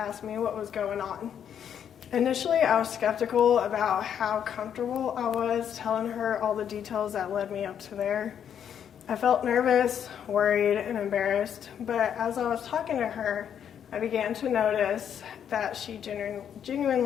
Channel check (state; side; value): quieter; right; 8.8 dB